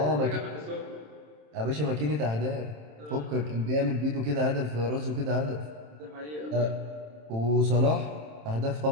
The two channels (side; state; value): left; late; 27 ms